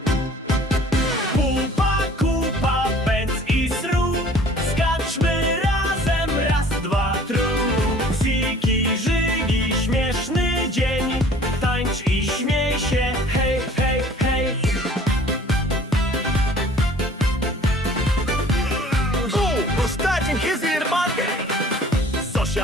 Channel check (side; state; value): both; normal; correlation 0.51